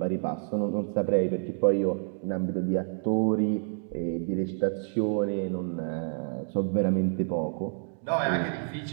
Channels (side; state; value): left; silent; digital silence